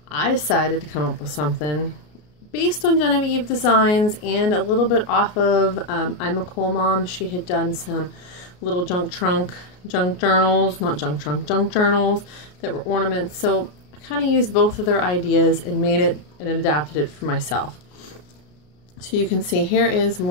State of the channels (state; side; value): late; right; 33 ms